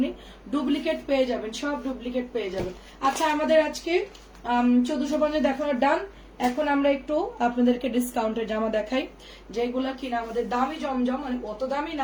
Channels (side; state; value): both; identical; correlation 1.00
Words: ডুপ্লিকেট পেয়ে যাবেন, সব ডুপ্লিকেট পেয়ে যাবেন। আচ্ছা, আমাদের আজকে 1450 দেখানোর ডান। এখন আমরা একটু আপনাদেরকে ডিসকাউন্টের জামা দেখাই, যেগুলা কিনা আমাদের দামি জমজম, মানে অত দামি